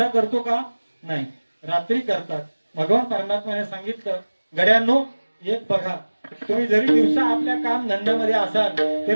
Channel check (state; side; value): inverted; both; correlation -1.00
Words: करतो का? नाही, रात्री करतात. भगवान परमात्म्याने सांगितलं, गड्यांनो एक बघा, तुम्ही जरी दिवसा आपल्या काम धंद्यामध्ये असाल